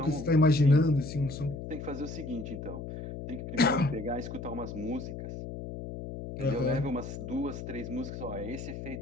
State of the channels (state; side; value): noise; left; hum, 8 dB below the sound